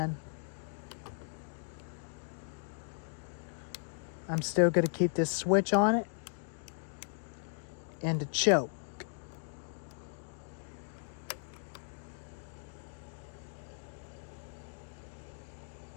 I'm still going to keep this switch on it and the choke.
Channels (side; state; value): right; silent; digital silence